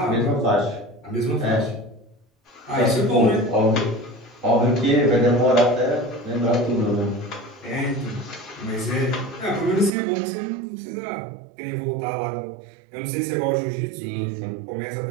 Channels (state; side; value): drops out; left; at 9.9 s